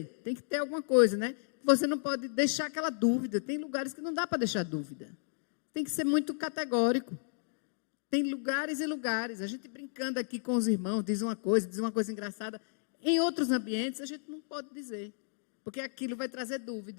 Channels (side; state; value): right; silent; digital silence